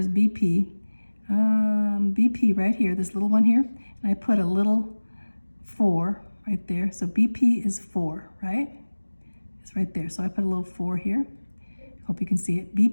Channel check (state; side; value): inverted; both; correlation -1.00